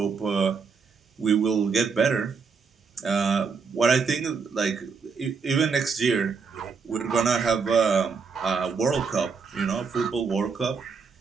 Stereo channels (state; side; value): quieter; left; 5.4 dB